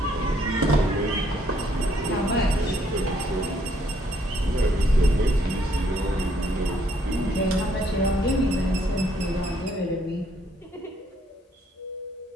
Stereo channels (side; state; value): both; normal; correlation 0.68